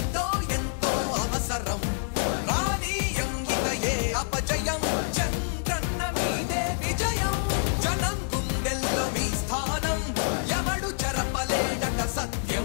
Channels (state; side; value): silent; right; 60 dB below the other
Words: ఎంతో అవసరం రానీయం ఇక ఏ అపజయం చంద్రన్న మీదే విజయం జనం గుండెల్లో మీ స్థానం ఎవడు చెరపలేడట